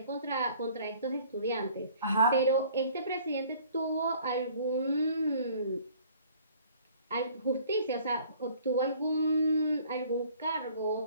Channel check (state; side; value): inverted; both; correlation -0.54